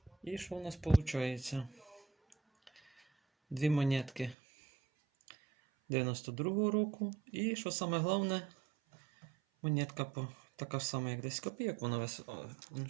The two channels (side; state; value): left; drops out; at 4.4 s